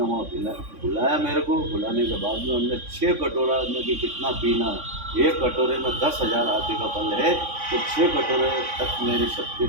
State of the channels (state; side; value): late; left; 3.5 ms